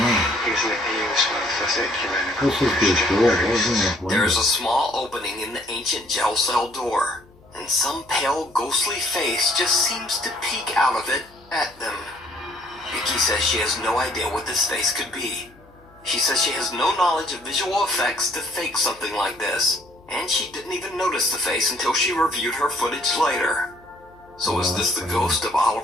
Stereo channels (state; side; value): noise; left; hum, 27 dB below the sound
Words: easily used for particular this is pretty cool. What was in that There is window? a small opening in the ancient jail cell door, and some pale, ghostly face just seems to peek out of it at them. Vicky says she has no idea what this face could be. She says she has no knowledge of visual effects to fake something like this, and she didn't even notice the face until she reviewed her footage later. So is this the ghost of